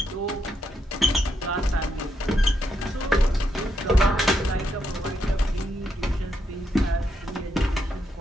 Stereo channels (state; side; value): normal; both; correlation 0.80